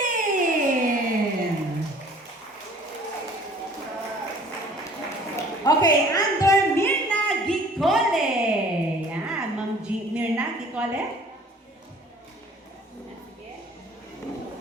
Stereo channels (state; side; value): normal; both; correlation 0.52